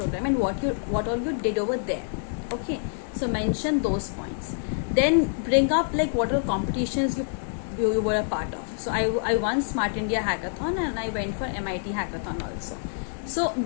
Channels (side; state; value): right; silent; digital silence